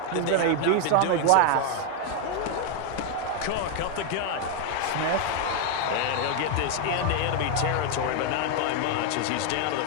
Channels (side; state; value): both; different; correlation 0.01